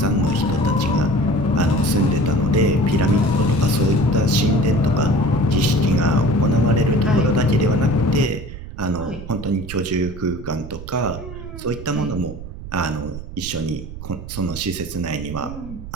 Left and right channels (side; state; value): right; noise; rumble, 11 dB below the sound